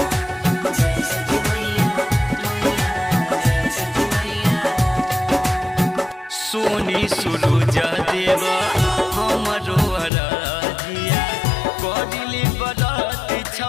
सोनी सूरज देव हमरो अरजिया करिले बरत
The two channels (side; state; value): right; drops out; at 10.1 s